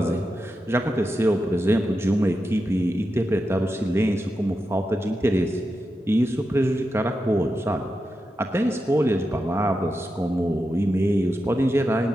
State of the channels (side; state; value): both; normal; correlation 0.89